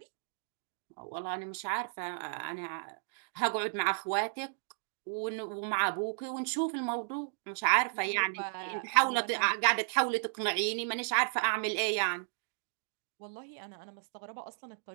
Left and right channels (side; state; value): left; silent; digital silence